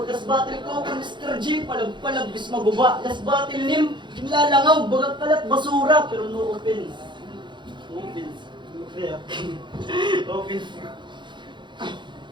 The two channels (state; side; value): late; left; 0.23 ms